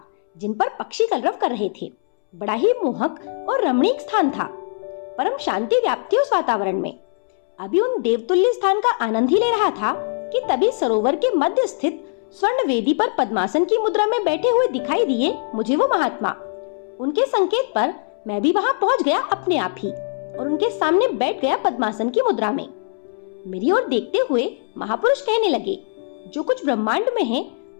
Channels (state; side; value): silent; right; 65 dB below the other